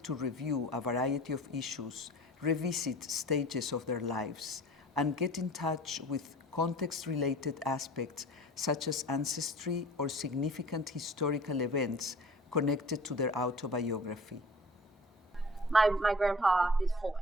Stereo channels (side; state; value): both; normal; correlation 0.43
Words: to review a variety of issues, revisit stages of their lives, and get in touch with context-related aspects such as ancestry or significant historical events connected to their autobiography. My grandpa is